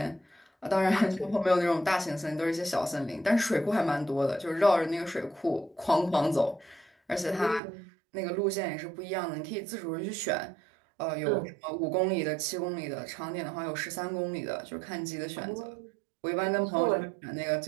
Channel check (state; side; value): drops out; left; at 7.6 s